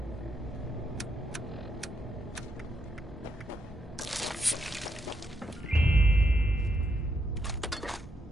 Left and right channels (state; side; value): normal; both; correlation 0.80